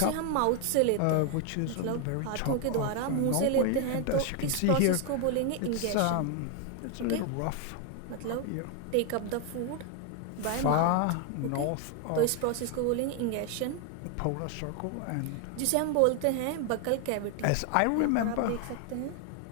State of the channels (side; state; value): both; different; correlation 0.01